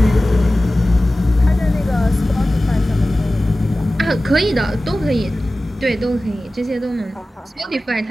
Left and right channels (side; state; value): both; normal; correlation 0.96